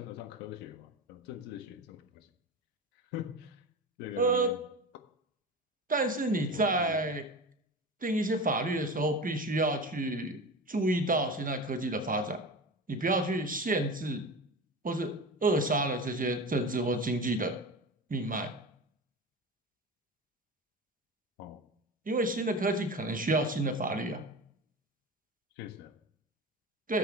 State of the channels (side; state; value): both; normal; correlation 0.29